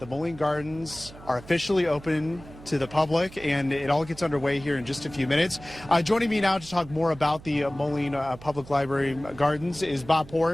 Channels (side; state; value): right; noise; hum, 18 dB below the sound